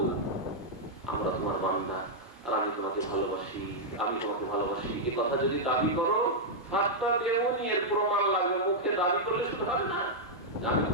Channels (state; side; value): normal; both; correlation -0.05